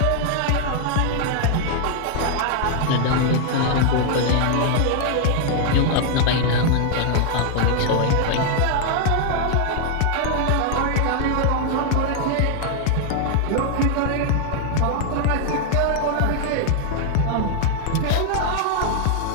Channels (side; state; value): both; different; correlation 0.00